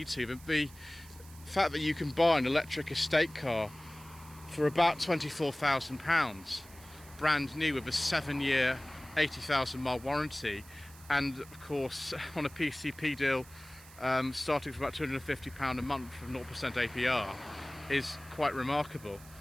to. But the fact that you can buy an electric estate car for about £24,000 brand new with a 7-year 80,000 mile warranty, and of course on a PCP deal starting from about £250 a month from 0% APR, is quite remarkable.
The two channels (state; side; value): noise; right; hiss, 21 dB below the sound